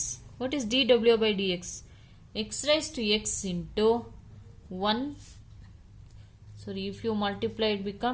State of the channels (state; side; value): identical; both; correlation 1.00